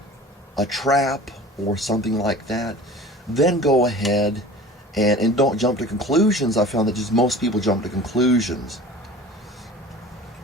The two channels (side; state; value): both; normal; correlation 0.42